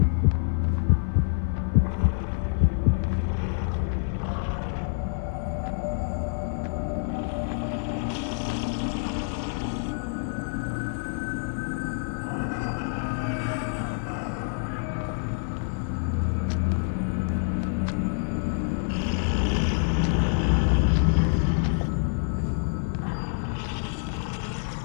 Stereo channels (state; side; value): silent; right; digital silence